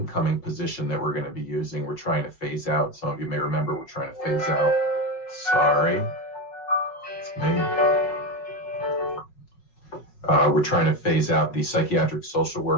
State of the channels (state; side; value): late; right; 5.4 ms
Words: position that we're going to be using. We're trying to phase out. Some of you may remember we're trying to phase out. Sorry, it's me. We're trying to phase out the psychiatric social